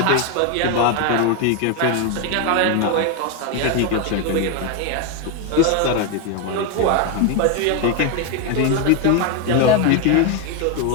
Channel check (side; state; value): both; different; correlation 0.02